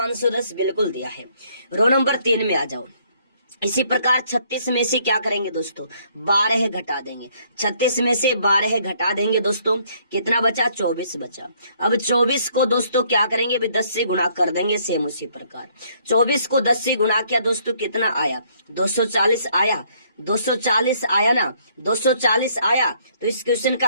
बिल्कुल दिया है। रो नंबर 3 में आ जाओ। इसी प्रकार 36 में से क्या करेंगे दोस्तों, 12 घटा देंगे। 36 में से 12 घटा देंगे दोस्तों, कितना बचा, 24 बचा। अब 24 को दोस्तों क्या करेंगे, 10 से गुणा कर देंगे, सेम उसी प्रकार। 24 को 10 से गुणा किया दोस्तों, कितना आया, 240 आया। 240 आया ना, 240 आया। तो इस क्वेश्चन का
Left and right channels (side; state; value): both; inverted; correlation -0.66